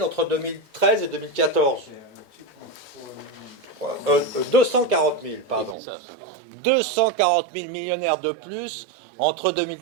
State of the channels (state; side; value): drops out; left; at 5.8 s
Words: entre 2013 et 2014. 240 000, pardon. 240 000 millionnaires de plus entre